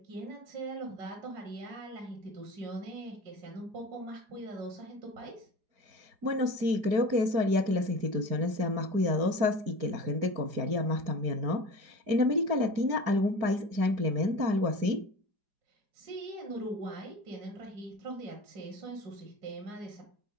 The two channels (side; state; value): left; late; 4.9 ms